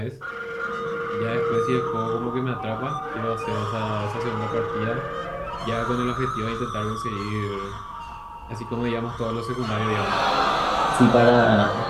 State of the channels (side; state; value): both; identical; correlation 1.00